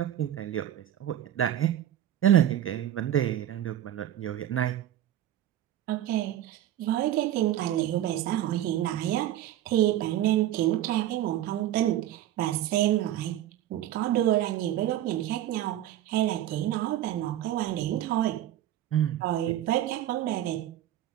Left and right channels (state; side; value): quieter; left; 12.4 dB